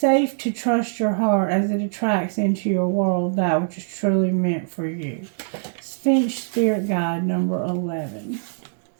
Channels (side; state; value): left; silent; digital silence